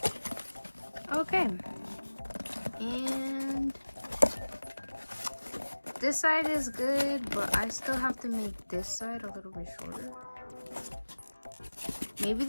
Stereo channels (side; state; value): both; inverted; correlation -1.00